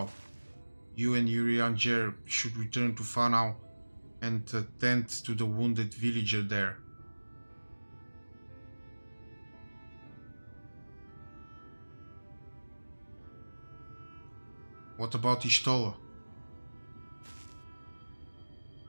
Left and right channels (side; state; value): both; inverted; correlation -1.00